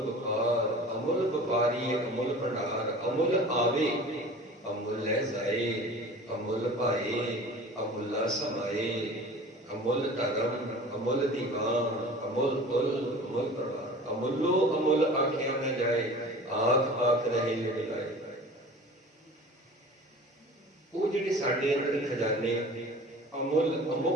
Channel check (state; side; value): normal; both; correlation 0.41